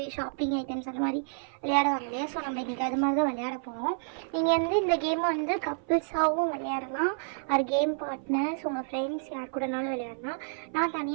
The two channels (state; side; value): silent; left; 56 dB below the other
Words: ஷாப்பிங் ஐட்டம்ஸ் அந்த மாதிரி விளையாடுவாங்க இல்லையா. ஸோ நம்ம இன்றைக்கி அது மாதிரி தான் விளையாட போகிறோம். நீங்கள் வந்து இந்த கேமை வந்து கப்பிள்ஸாகவும் விளையாடலாம், அது கேம் பார்ட்னர்ஸ் உங்கள் ஃப்ரெண்ட்ஸ் யார் கூடனாலும் விளையாடலாம். நான்